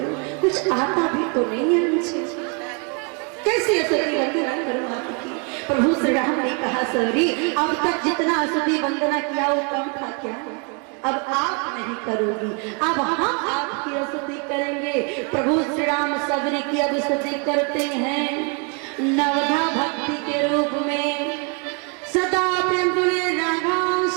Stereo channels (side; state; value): left; quieter; 35.6 dB